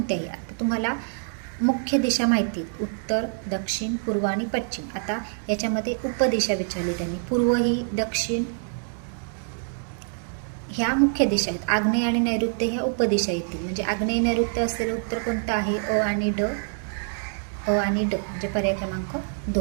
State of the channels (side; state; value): left; silent; 61 dB below the other